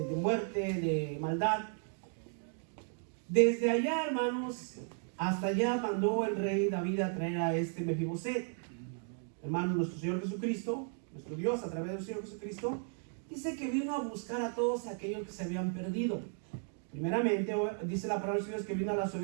muerte, de maldad. Desde allá, hermanos, hasta allá mandó el rey David a traer a este Mefibosé. Hermanos, nuestro Señor Jesucristo, nuestro Dios a través del Señor Jesucristo, dice que vino a buscar a todos aquellos que se habían perdido. Primeramente, dice la palabra de Dios que vino a las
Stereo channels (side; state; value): left; silent; 54 dB below the other